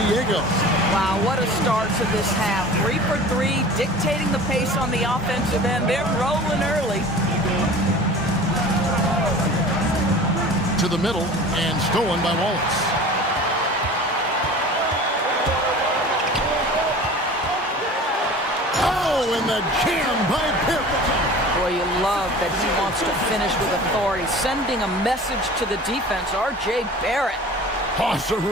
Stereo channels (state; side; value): normal; both; correlation 0.41